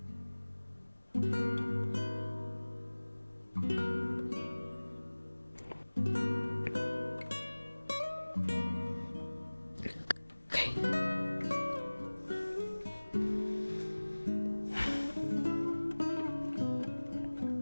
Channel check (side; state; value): both; inverted; correlation -1.00